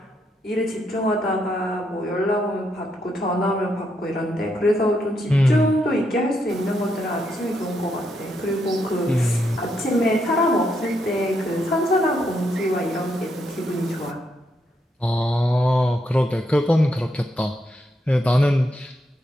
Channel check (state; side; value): normal; both; correlation 0.79